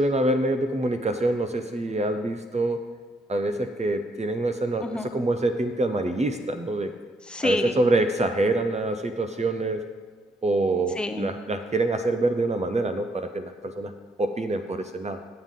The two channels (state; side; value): normal; both; correlation 0.72